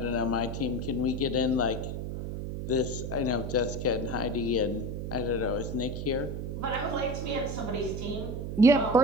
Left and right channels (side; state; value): right; noise; hum, 4 dB below the sound